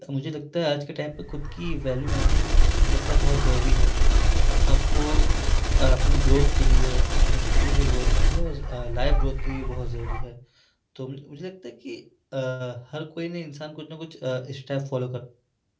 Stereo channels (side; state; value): both; identical; correlation 1.00